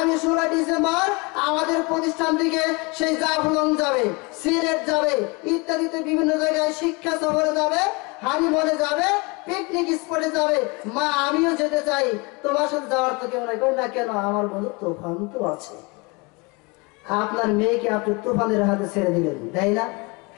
16 ডিসেম্বর আমাদের প্রতিষ্ঠান থেকে সেই জাফলং যাবে, সিলেট যাবে, ইত্যাদিতে বিভিন্ন জায়গায় শিক্ষা সফরে যাবে, হানিমুনে যাবে, পিকনিক স্পটে যাবে। মা আমিও যেতে চাই, তোমার সাথে যাওয়ার তো কেউ নাই। না কেন? আমার বন্ধু তুফান তো আছে। আপনার মেয়েকে আপনি তুফানের হাতে ছেড়ে দিলেন, তাই না?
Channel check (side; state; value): right; quieter; 27.9 dB